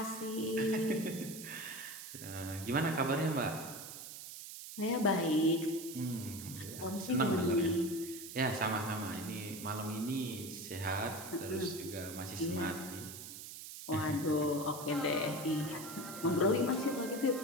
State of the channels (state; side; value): noise; right; hiss, 11 dB below the sound